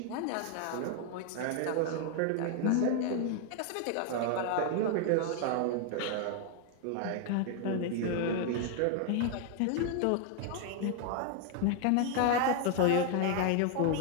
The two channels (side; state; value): both; different; correlation 0.00